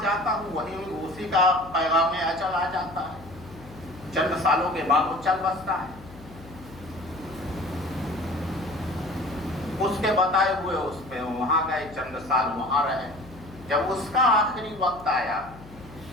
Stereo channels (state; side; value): noise; left; hum, 19 dB below the sound